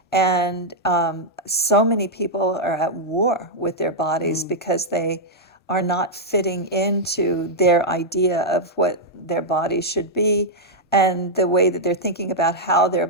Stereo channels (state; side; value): normal; both; correlation -0.04